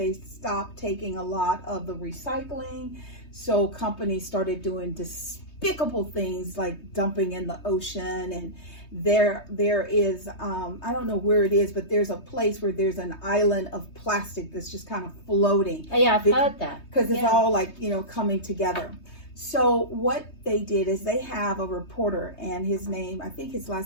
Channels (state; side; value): late; right; 3.2 ms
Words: stopped taking a lot of the recycling. So companies started doing despicable things like dumping in the ocean. And there is, I don't know where it is, but there's a place where there's an island of plastic that's just kind of floating. Oh, yeah, I've heard that. Because it's all like, coming together. So what they did is they have a reporter, and his name, I think his